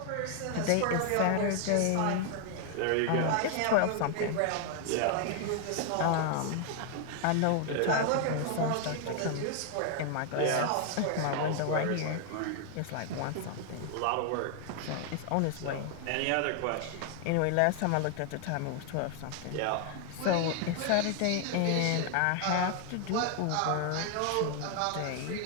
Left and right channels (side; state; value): both; different; correlation 0.00